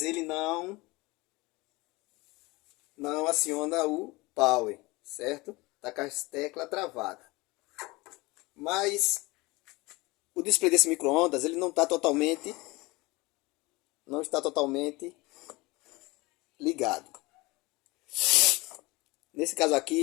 ele não aciona o power, certo? Tá com as teclas travadas. Mas o display desse micro-ondas ele não está totalmente ligado. Nesse caso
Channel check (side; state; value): right; quieter; 23.0 dB